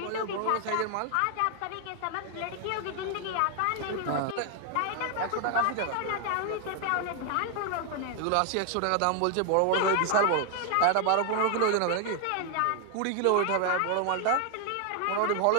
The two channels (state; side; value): different; both; correlation 0.00